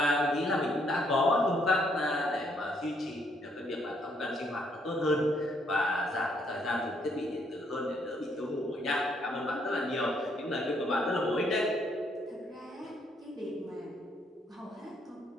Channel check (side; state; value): both; normal; correlation 0.71